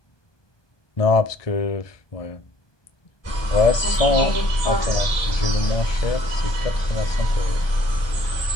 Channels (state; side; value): late; right; 1.2 ms